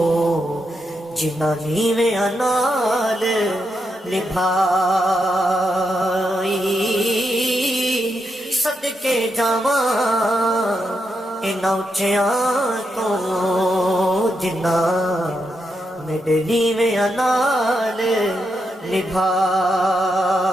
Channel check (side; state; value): both; normal; correlation 0.83